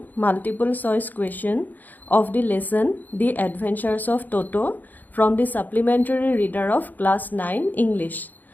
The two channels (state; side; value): late; right; 0.084 ms